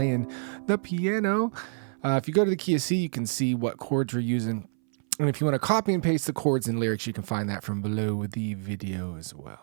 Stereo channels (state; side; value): silent; left; 60 dB below the other